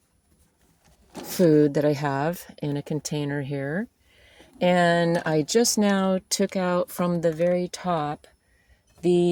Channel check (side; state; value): both; identical; correlation 1.00